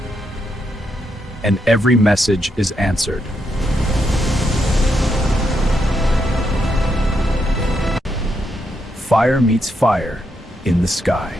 And every message is answered. Fire meets fire in the sky.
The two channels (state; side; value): normal; both; correlation 0.80